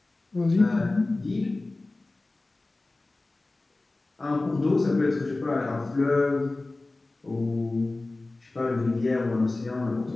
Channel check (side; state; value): right; quieter; 3.1 dB